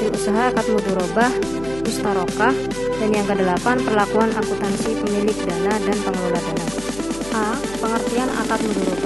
usaha akad mudharabah mustarokah. Dan yang ke-8, perlakuan akuntansi pemilik dana dan pengelola dana. A. Pengertian akad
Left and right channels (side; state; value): left; noise; hum, 16 dB below the sound